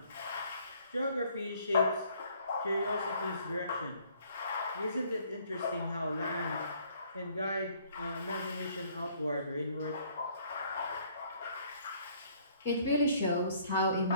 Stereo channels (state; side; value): inverted; both; correlation -0.62